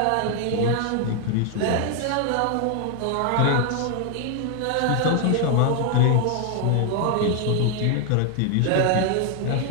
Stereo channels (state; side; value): different; both; correlation 0.00